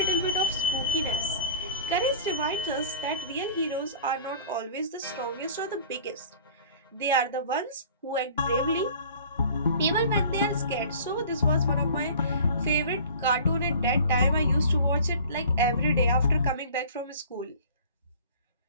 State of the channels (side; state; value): both; inverted; correlation -0.44